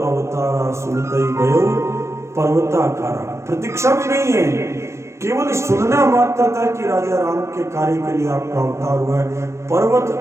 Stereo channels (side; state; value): left; late; 0.13 ms